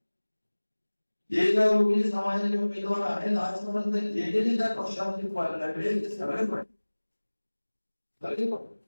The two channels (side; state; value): both; inverted; correlation -1.00